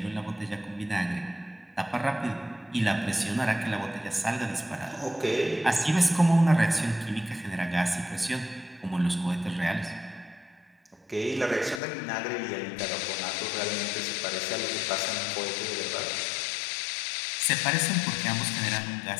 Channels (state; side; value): drops out; right; at 11.8 s